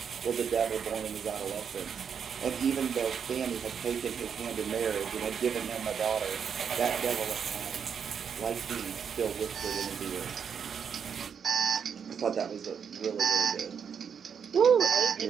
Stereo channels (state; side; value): quieter; left; 7.2 dB